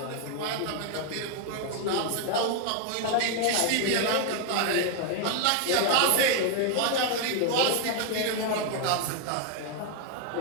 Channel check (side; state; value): both; different; correlation 0.01